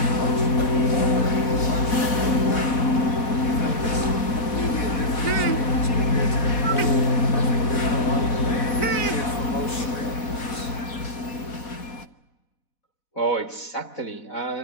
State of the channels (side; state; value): right; late; 4.2 ms